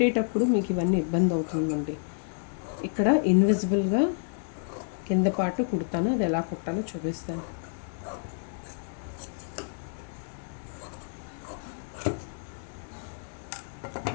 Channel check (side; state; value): right; silent; digital silence